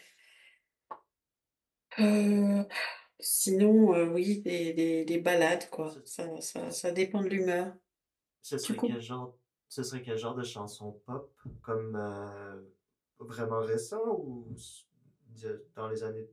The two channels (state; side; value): identical; both; correlation 1.00